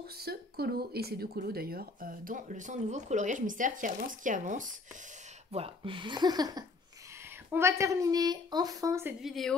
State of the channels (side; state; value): right; quieter; 3.8 dB